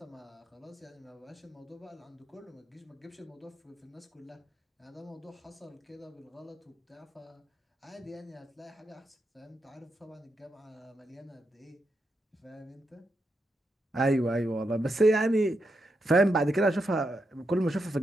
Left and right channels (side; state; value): both; normal; correlation 0.84